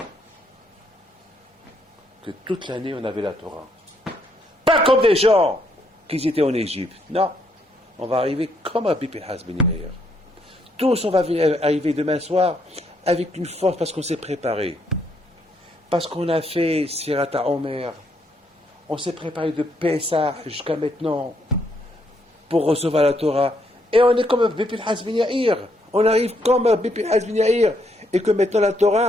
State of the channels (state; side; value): normal; both; correlation 0.73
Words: Que toute l'année, on avait la Torah. Pas comme des gens qui étaient en Égypte. Non. On va arriver comme Rabbi Pinchas ben Yair. Tous, on va arriver demain soir avec une force parce qu'on s'est préparé. Parce qu'on a fait Sirata Omer. On s'est préparé de Pessah jusqu'à maintenant pour recevoir la Torah. Et on est comme Rabbi Pinchas ben Yair. On arrive comme Rabbi Pinchas ben Yair. Et que maintenant la